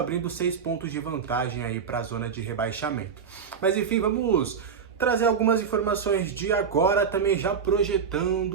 6 pontos de vantagem aí para a zona de rebaixamento. Mas enfim, vamos trazer algumas informações de agora, também já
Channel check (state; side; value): quieter; left; 6.6 dB